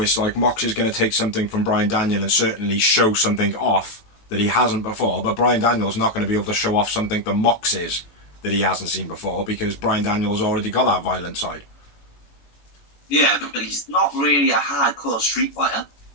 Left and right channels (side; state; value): right; late; 18 ms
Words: like Mox is going to take something from Brian Daniel and certainly show something off that he hasn't before, but Brian Daniel's not going to be able to show off something that Mox is that he hasn't seen before because Brian Daniel's already got that violent side. Yeah, but he's not really a hardcore street fighter.